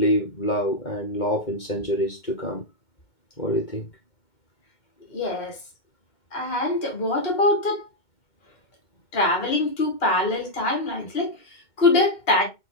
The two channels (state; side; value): late; right; 2.1 ms